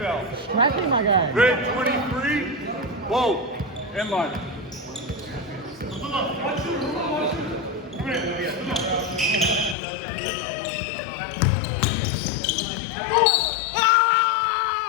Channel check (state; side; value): drops out; right; at 9.8 s